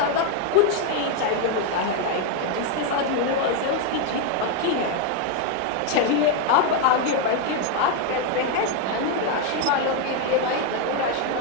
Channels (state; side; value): different; both; correlation 0.01